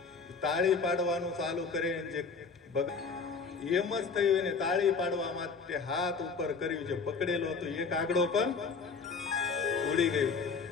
તાળી પાડવાનું ચાલુ કરે જે એમ જ થયું. એને તાળી પાડવા માટે હાથ ઉપર કર્યું, જે પકડેલો હતો એ કાગડો પણ ઉડી ગયો.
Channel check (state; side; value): quieter; right; 5.0 dB